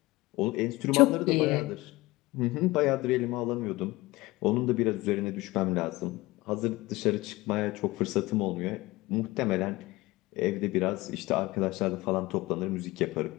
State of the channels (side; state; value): right; quieter; 20.4 dB